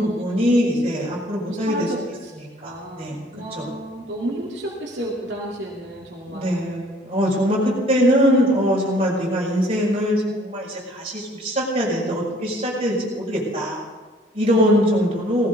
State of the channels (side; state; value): both; normal; correlation 0.57